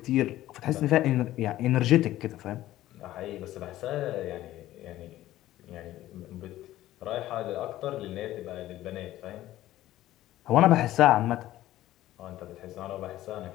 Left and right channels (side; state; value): right; quieter; 14.7 dB